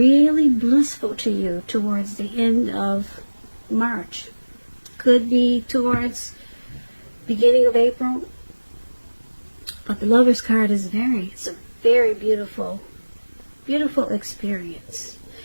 blissful to you towards the end of March. Could be towards beginning of April. But the Lovers card is it's a very beautiful, beautiful experience.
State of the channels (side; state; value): both; inverted; correlation -1.00